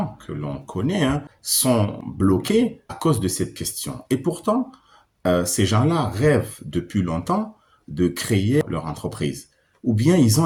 que l'on connaît sont bloqués à cause de cette question. Et pourtant, ces gens-là rêvent depuis longtemps de créer leur entreprise. Ou bien ils ont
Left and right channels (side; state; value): both; identical; correlation 1.00